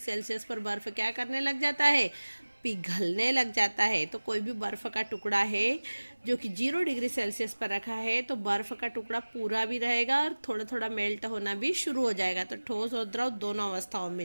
पर बर्फ क्या करने लग जाता है, पिघलने लग जाता है। तो कोई भी बर्फ का टुकड़ा है जो कि 0 डिग्री सेल्सियस पर रखा है, तो बर्फ का टुकड़ा पूरा भी रहेगा और थोड़ा थोड़ा मेल्ट होना भी शुरू हो जाएगा। तो ठोस और द्रव दोनों अवस्थाओं में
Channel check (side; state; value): both; inverted; correlation -1.00